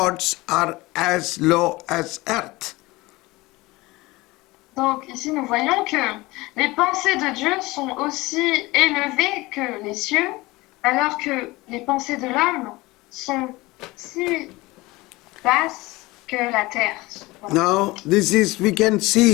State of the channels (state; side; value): quieter; right; 21.2 dB